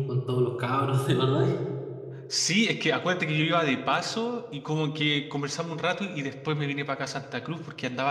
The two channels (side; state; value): both; identical; correlation 1.00